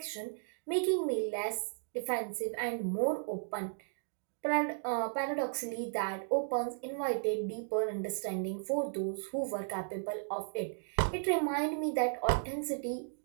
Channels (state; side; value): silent; left; digital silence